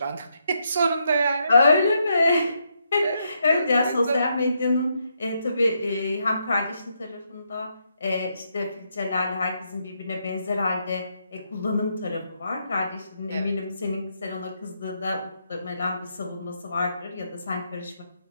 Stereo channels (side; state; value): both; inverted; correlation -0.79